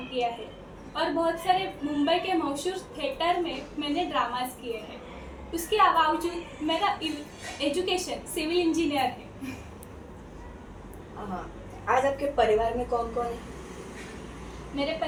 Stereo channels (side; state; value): both; identical; correlation 1.00